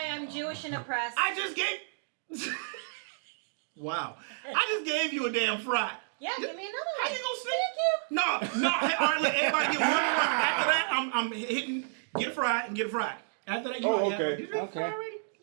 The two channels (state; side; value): silent; left; digital silence